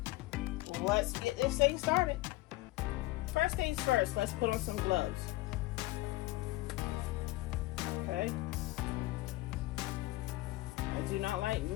Let's get this thing started. First things first, let's put on some gloves. Okay. I do not like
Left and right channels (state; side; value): quieter; right; 19.3 dB